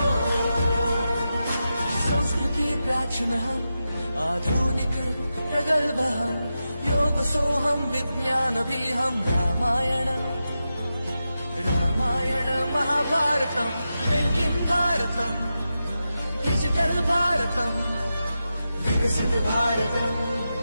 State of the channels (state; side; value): inverted; both; correlation -0.90